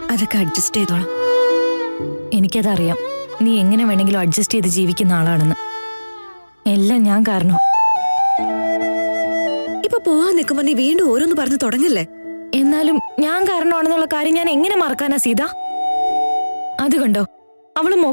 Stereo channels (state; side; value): inverted; both; correlation -1.00